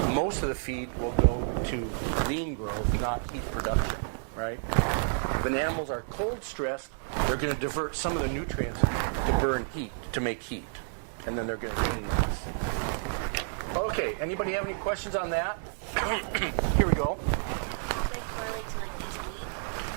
most of the feed will go to lean growth, not heat production, right? When animals are cold stressed, they're going to divert some of the nutrients to burn heat, to make heat. And then they're going to gain less. Okay, anybody have any questions on that? Here we go.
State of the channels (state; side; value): silent; left; digital silence